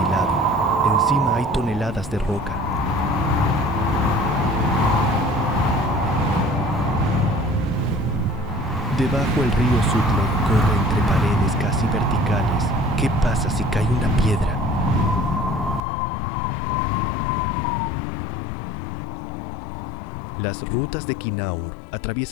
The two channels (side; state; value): right; drops out; at 15.8 s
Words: Encima hay toneladas de roca. Debajo el río Sutlej corre entre paredes casi verticales. ¿Qué pasa si cae una piedra? Las rutas de Kinnaur